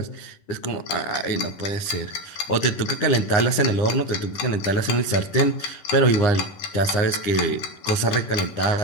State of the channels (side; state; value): right; late; 9.8 ms